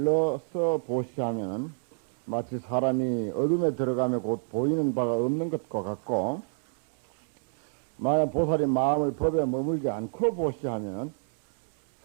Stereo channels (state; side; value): silent; left; 59 dB below the other